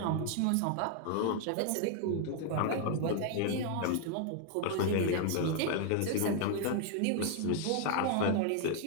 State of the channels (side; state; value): both; different; correlation 0.00